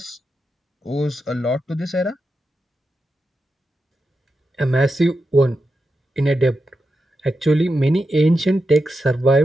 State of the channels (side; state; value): both; normal; correlation 0.88